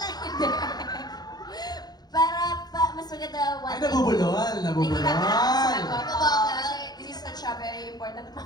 lang, hindi. Para mas maganda one Ay, nabubulol! Nabubulol! Kasi this is such a very important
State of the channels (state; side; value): late; right; 0.19 ms